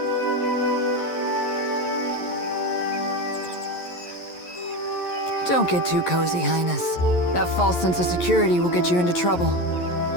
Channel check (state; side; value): late; right; 11 ms